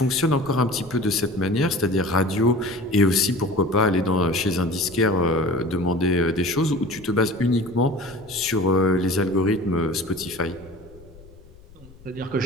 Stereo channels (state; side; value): noise; left; rumble, 23 dB below the sound